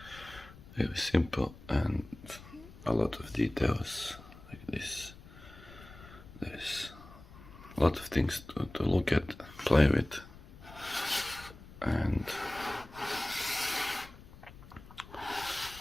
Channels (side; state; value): left; noise; rumble, 18 dB below the sound